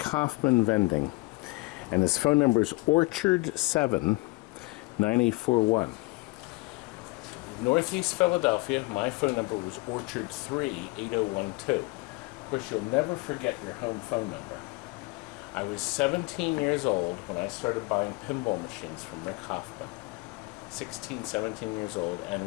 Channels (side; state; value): right; quieter; 24.5 dB